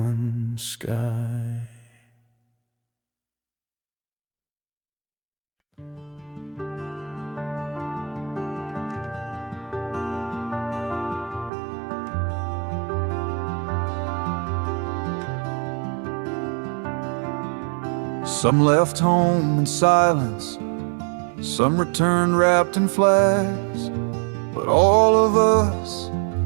sky. Some left home in silence, some returned wrapped in flags, but all of us,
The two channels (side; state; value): left; drops out; at 11.5 s